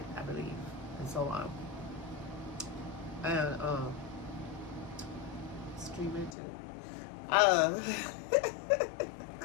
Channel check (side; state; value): right; drops out; at 6.4 s